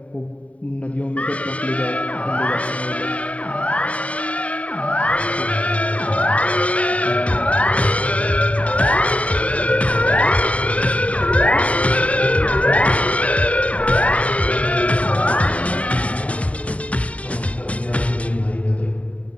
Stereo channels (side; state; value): right; late; 0.066 ms